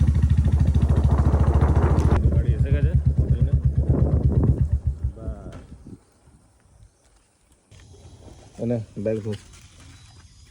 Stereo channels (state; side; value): identical; both; correlation 1.00